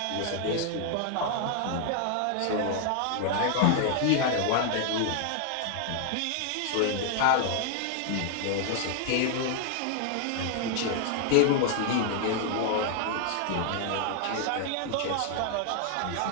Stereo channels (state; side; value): different; both; correlation 0.00